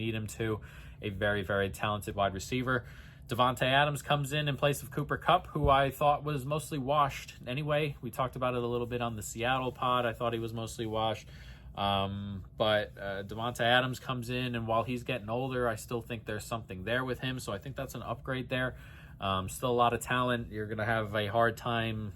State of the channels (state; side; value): identical; both; correlation 1.00